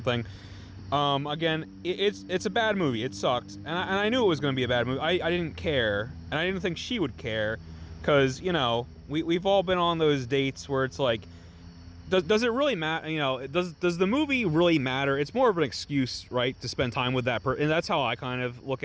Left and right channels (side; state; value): both; identical; correlation 1.00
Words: Again, it's a bad movie. It sucked, and I knew it was going to be a bad movie. I didn't care, and I didn't think she would care, because we've all been on those dates where it's like, does it really matter? Does the movie really matter? It's more of an excuse, right, to spend time with that person, and that's how I kind of look